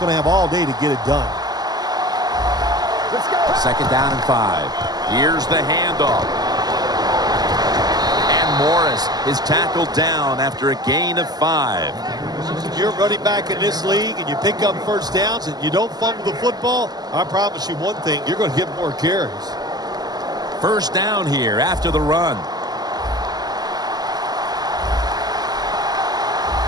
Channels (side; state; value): left; late; 0.20 ms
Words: to have all day to get it done. Let's go. 2nd down and 5. Here's the handoff. And Morris is tackled down after a gain of 5. You're running back in this league and you pick up first downs and you don't fumble the football, I promise you one thing, you're going to get more carries. First down here after the run.